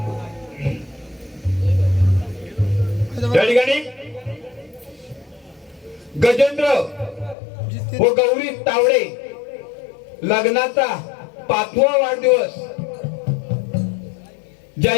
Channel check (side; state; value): right; drops out; at 7.4 s